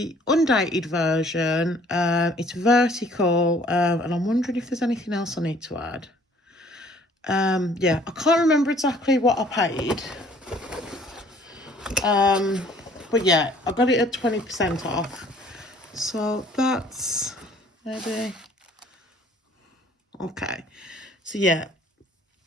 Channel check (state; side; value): normal; both; correlation 0.57